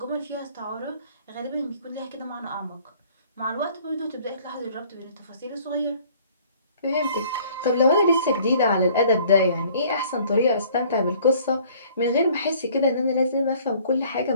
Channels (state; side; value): inverted; both; correlation -0.55